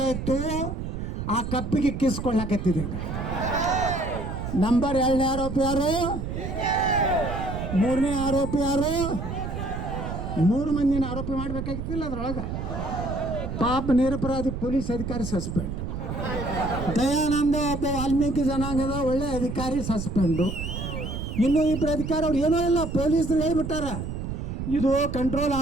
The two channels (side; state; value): right; noise; rumble, 5 dB below the sound